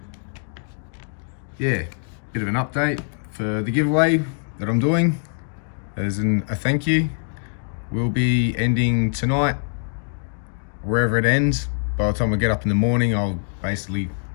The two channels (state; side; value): silent; right; 63 dB below the other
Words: yeah, bit of an update for the giveaway that I'm doing as a thank you. We'll be ending tonight wherever it ends. By the time I get up in the morning, I'll basically